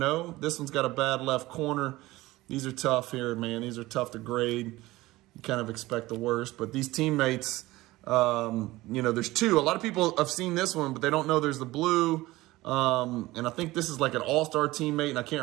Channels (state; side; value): quieter; left; 18.7 dB